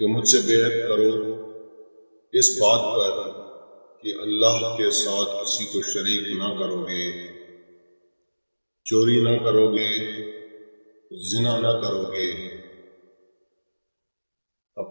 کہ مجھ سے بیعت کرو اس بات پر کہ اللہ کے ساتھ کسی کو شریک نہ کرو گے، چوری نہ کرو گے، زنا نہ کرو گے،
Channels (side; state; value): both; inverted; correlation -1.00